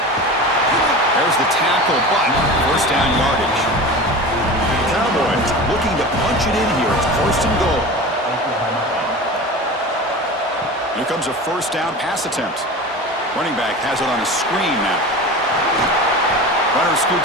There's the tackle, but first down yardage. Cowboys looking to punch it in here. It's first and goal. Here comes a first down pass attempt. Running back has it on a screen now. Runner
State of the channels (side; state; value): both; normal; correlation 0.32